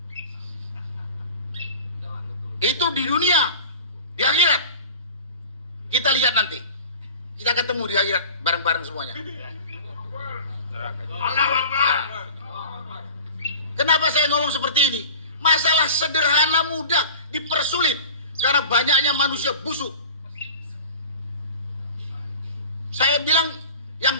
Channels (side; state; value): both; inverted; correlation -0.39